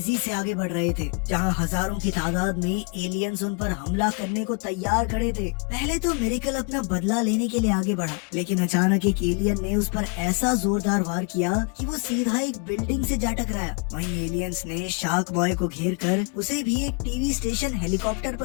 से आगे बढ़ रहे थे, जहां हजारों की तादाद में एलियंस उन पर हमला करने को तैयार खड़े थे। पहले तो मिरेकल अपना बदला लेने के लिए आगे बढ़ा, लेकिन अचानक एक एलियन ने उस पर ऐसा जोरदार वार किया कि वो सीधा एक बिल्डिंग से जा टकराया। वहीं एलियंस ने शार्क बॉय को घेर कर उसे भी एक टीवी स्टेशन हेलीकॉप्टर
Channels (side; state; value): right; quieter; 35.9 dB